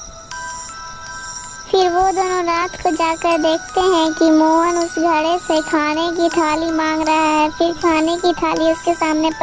फिर वो दोनों रात को जाकर देखते हैं कि मोहन उस घड़े से खाने की थाली मांग रहा है। फिर खाने की थाली उसके सामने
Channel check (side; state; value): both; identical; correlation 1.00